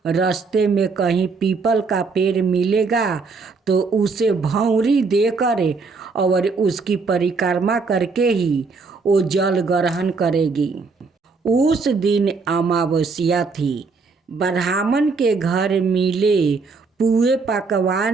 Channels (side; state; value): left; quieter; 4.5 dB